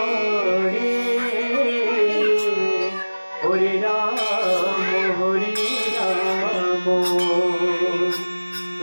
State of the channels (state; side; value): inverted; both; correlation -1.00